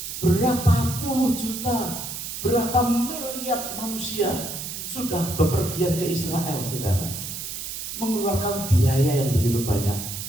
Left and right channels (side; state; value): right; noise; hiss, 7 dB below the sound